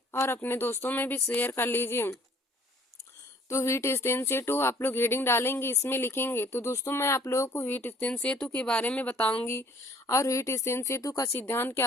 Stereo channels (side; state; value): both; normal; correlation 0.57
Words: और अपने दोस्तों में भी शेयर कर लीजिए। तो व्हीटस्टीन सेतु आप लोग हेडिंग डालेंगे, इसमें लिखेंगे। तो दोस्तों मैं आप लोगों को व्हीटस्टीन सेतु के बारे में बताऊंगी और व्हीटस्टीन सेतु का सिद्धांत